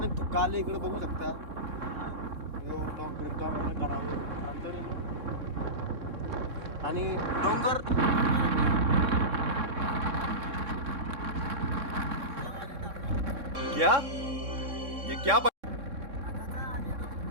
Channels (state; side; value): late; left; 3.6 ms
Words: धुका आले इकडे बघू शकता. आणि डोंगर क्या ये क्या